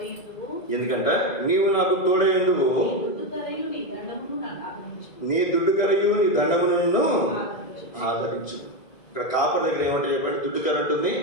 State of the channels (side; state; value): right; late; 1.6 ms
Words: ఎందుకంటే నీవు నాకు తోడైందువు, నీ దుడ్డుకరయు నీ దండమును ఆదరించు. ఇక్కడ కాపర్ దగ్గర ఏమంటే చెప్పండి, దుడ్డుకర ఉంటుంది,